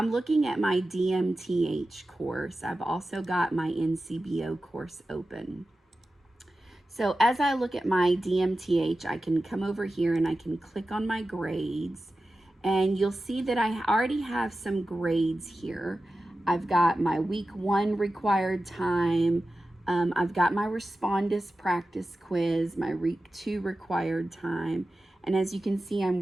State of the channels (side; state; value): both; normal; correlation 0.94